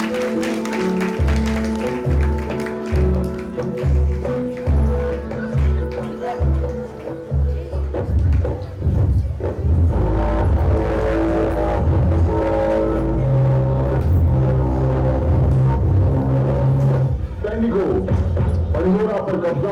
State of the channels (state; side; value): identical; both; correlation 1.00